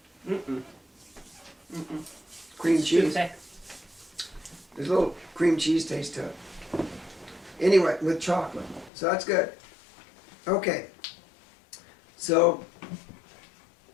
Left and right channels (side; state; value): right; drops out; at 8.9 s